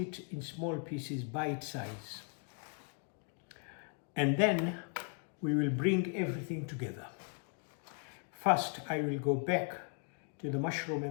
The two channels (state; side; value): quieter; right; 39.9 dB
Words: in small pieces, bite size. And then we will bring everything together. First, I will go back to the mushroom